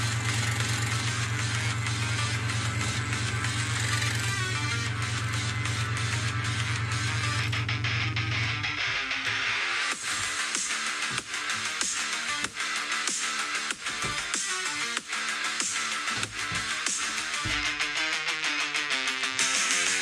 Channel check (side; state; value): both; identical; correlation 1.00